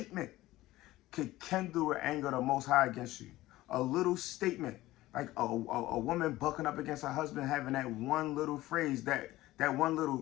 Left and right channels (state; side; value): quieter; right; 16.9 dB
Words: could kindle the anger of the Most High against you. A little statement, like a woman bucking up against her husband, having that one little phrase, that one